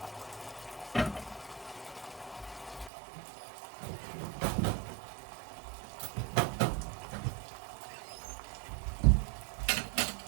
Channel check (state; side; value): drops out; left; at 2.9 s